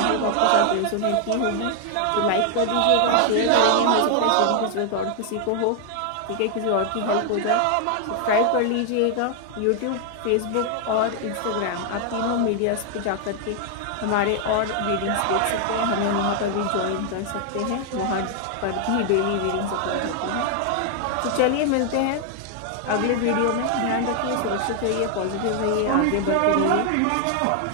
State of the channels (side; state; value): both; different; correlation 0.00